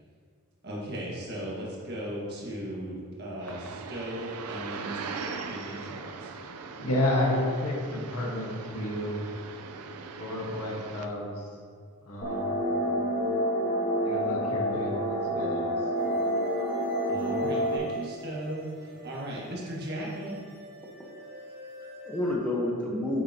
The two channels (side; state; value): both; normal; correlation 0.19